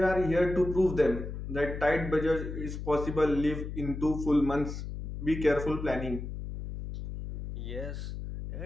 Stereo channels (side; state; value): left; noise; hum, 7 dB below the sound